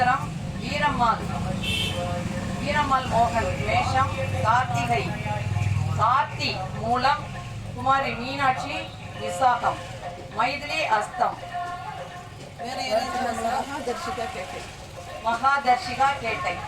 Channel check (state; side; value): identical; both; correlation 1.00